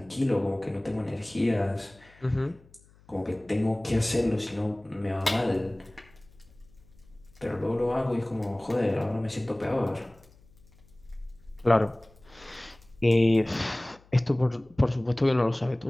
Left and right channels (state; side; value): noise; left; hum, 28 dB below the sound